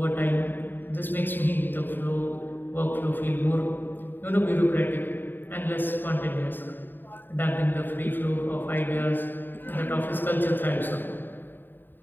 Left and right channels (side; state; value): right; late; 0.093 ms